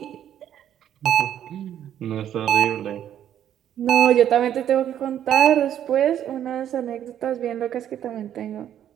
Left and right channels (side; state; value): left; quieter; 10.5 dB